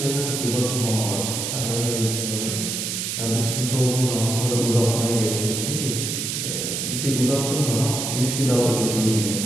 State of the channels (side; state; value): right; noise; hiss, 2 dB below the sound